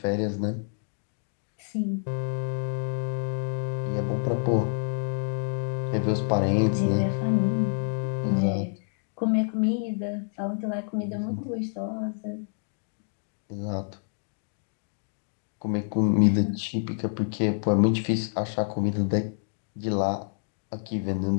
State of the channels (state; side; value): silent; right; digital silence